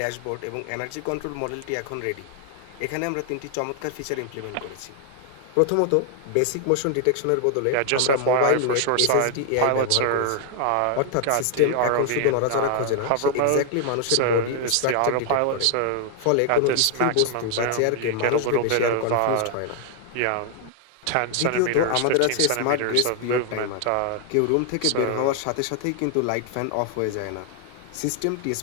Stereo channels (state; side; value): different; both; correlation 0.00